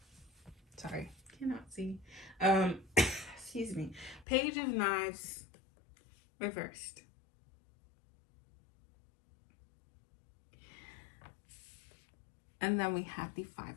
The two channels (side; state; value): right; drops out; at 4.2 s